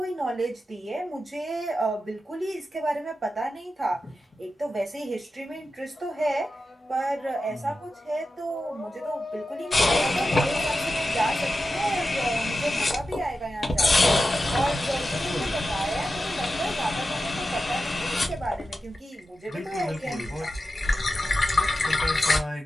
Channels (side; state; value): both; normal; correlation 0.91